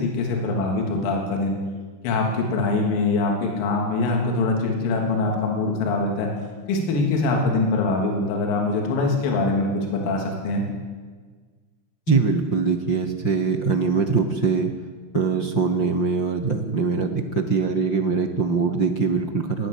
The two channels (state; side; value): late; right; 5.7 ms